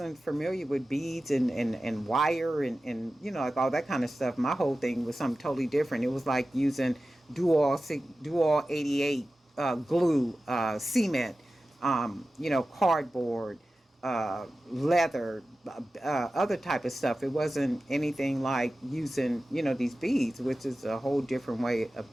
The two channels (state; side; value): normal; both; correlation 0.94